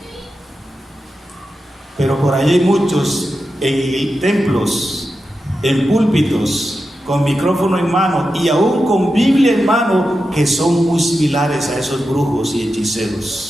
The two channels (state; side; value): normal; both; correlation 0.90